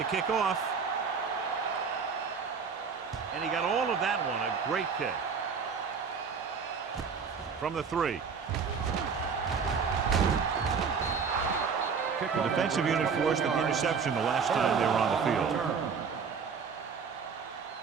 kick off. And he got all of that one. A great kick. From the 3. The defensive unit forced an interception the last time they were on the field.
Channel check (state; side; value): quieter; left; 5.9 dB